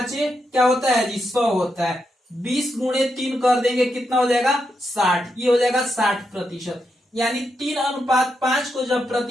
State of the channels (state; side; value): normal; both; correlation 0.83